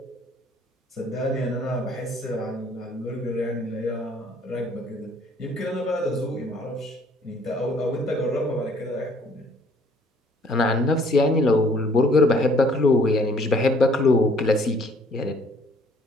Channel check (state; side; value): normal; both; correlation 0.60